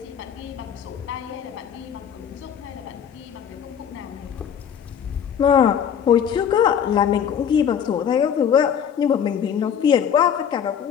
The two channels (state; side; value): quieter; right; 8.3 dB